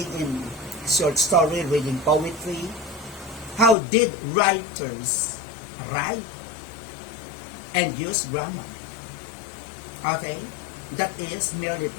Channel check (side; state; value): right; drops out; at 3.8 s